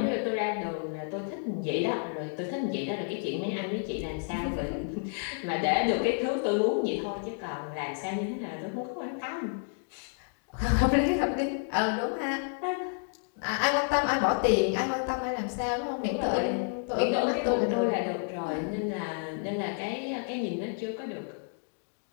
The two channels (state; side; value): silent; right; 58 dB below the other